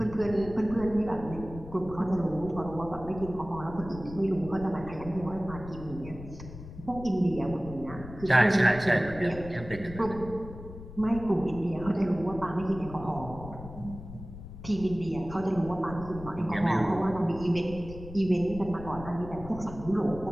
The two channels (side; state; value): left; noise; rumble, 13 dB below the sound